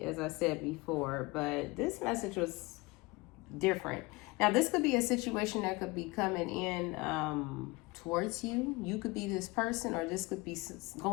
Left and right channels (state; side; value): quieter; right; 23.8 dB